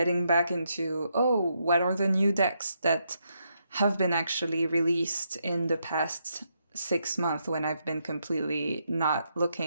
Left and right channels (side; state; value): both; inverted; correlation -0.79